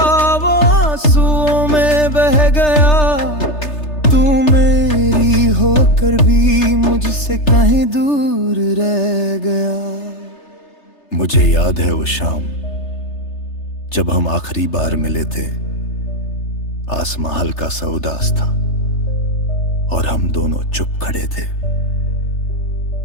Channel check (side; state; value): right; late; 3.3 ms